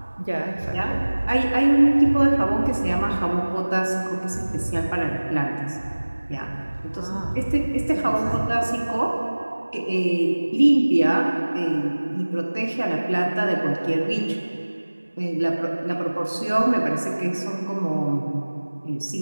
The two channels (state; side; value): inverted; both; correlation -1.00